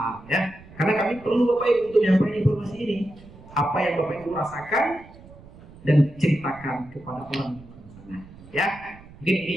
ya. Karena kami perlu bapak ibu untuk menyampaikan informasi ini. Apa yang bapak ibu rasakan dan ceritakan kepada orang sana ya. Mungkin ini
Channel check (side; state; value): right; noise; rumble, 21 dB below the sound